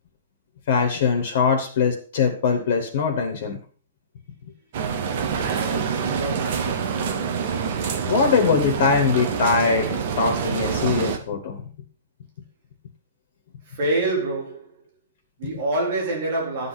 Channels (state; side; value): inverted; both; correlation -0.40